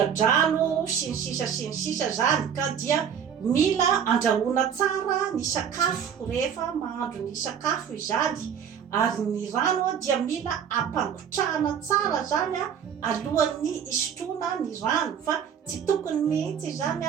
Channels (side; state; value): left; quieter; 8.1 dB